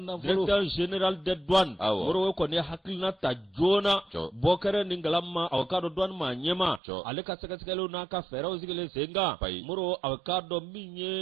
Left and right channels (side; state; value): left; drops out; at 6.8 s